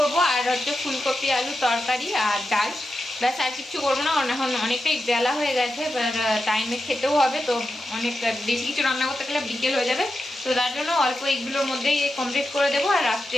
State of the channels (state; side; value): normal; both; correlation 0.89